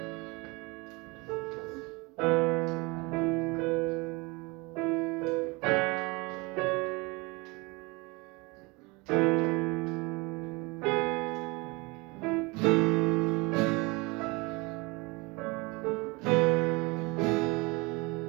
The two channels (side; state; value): left; quieter; 26.3 dB